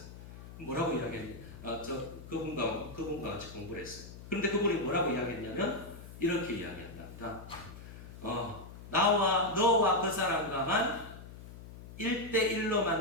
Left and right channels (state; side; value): noise; left; hum, 15 dB below the sound